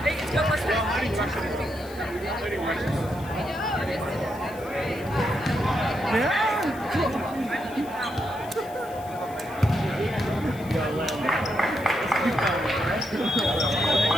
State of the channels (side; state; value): left; noise; hiss, 21 dB below the sound